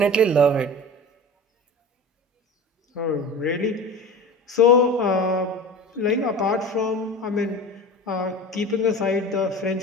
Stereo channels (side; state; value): both; normal; correlation 0.34